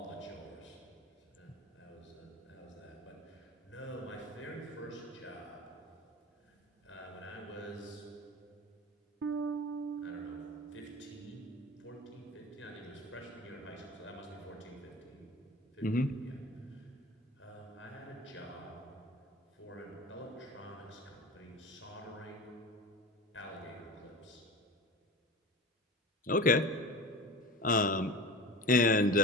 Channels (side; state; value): both; normal; correlation 0.33